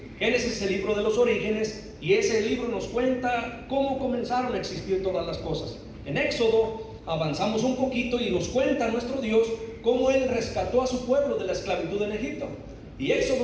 Génesis es el libro de los orígenes, y ese libro nos cuenta cómo comenzaron a existir todas las cosas. En Éxodo avanzamos un poquito y nos cuenta nuestro Dios cómo Él rescató a su pueblo de la esclavitud en Egipto. Y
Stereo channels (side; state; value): both; identical; correlation 1.00